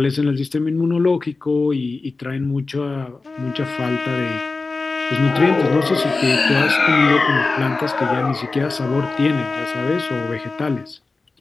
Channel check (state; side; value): quieter; right; 3.7 dB